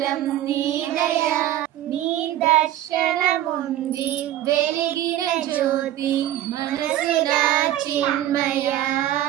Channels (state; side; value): quieter; left; 13.0 dB